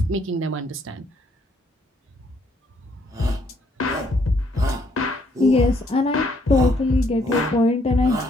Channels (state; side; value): normal; both; correlation 0.69